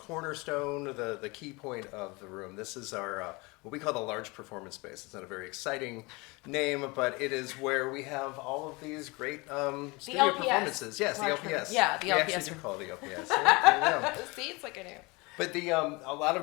the key point of the room. This is our, what we call the large performance space. It's not a very exciting name, but it is where we have all of these great studio LPS. performances. Yes, the Large LPS. Yeah, the we LPS. actually do call it the LPS. Yeah. See, it's like I knew. But a lot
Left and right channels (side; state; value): right; quieter; 25.7 dB